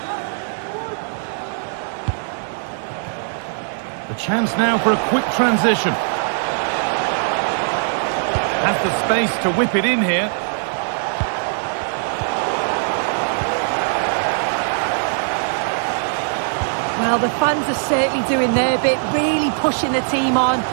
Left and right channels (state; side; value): silent; left; digital silence